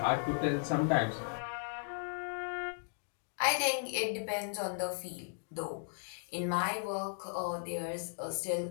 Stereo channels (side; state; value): right; silent; 54 dB below the other